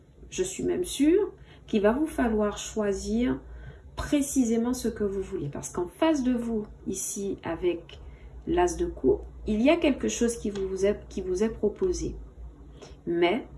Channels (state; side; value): identical; both; correlation 1.00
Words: je suis même sûre, qu'il va vous falloir choisir précisément ce que vous voulez. Parce qu'en face de vous, ici, avec l'As de coupe, il y a quelque chose qui vous est proposé. Mais